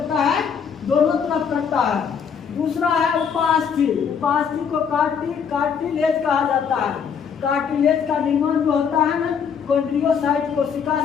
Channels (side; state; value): right; quieter; 6.9 dB